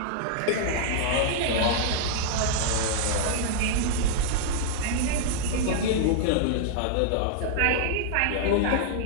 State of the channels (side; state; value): both; different; correlation -0.01